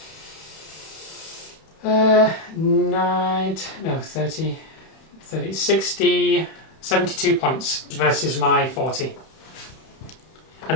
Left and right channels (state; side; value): late; right; 31 ms